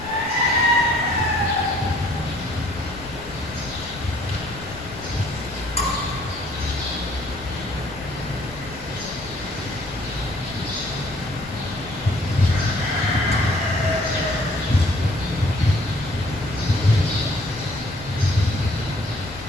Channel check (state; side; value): noise; left; rumble, 17 dB below the sound